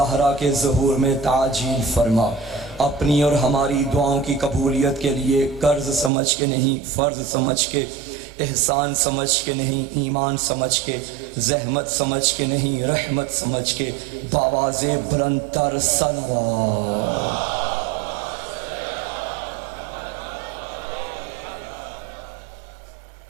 کے ظہور میں تعجیل فرما۔ اپنی اور ہماری دعاؤں کی قبولیت کے لیے قرض سمجھ کے نہیں، فرض سمجھ کے، احسان سمجھ کے نہیں، ایمان سمجھ کے، زحمت سمجھ کے نہیں، رحمت سمجھ کے باواز بلند تر صلوات۔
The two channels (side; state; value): left; drops out; at 6.1 s